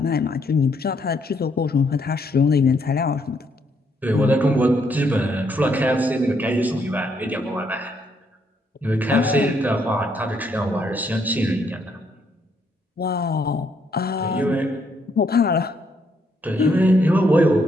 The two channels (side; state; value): both; normal; correlation 0.73